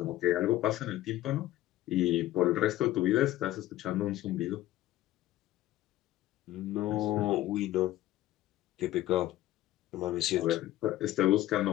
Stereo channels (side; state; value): right; quieter; 14.8 dB